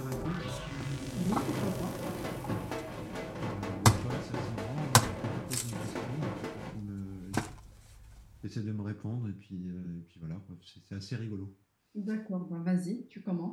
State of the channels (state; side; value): identical; both; correlation 1.00